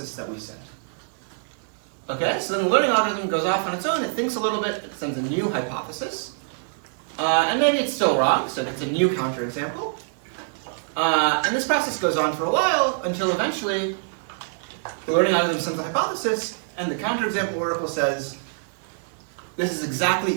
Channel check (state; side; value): silent; left; 59 dB below the other